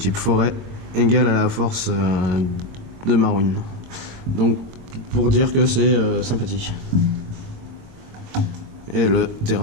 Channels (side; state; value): left; late; 22 ms